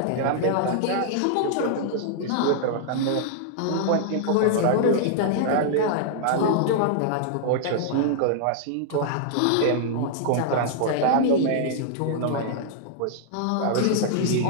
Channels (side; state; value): both; different; correlation -0.01